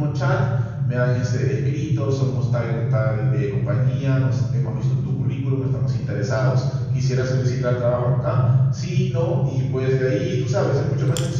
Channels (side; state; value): both; identical; correlation 1.00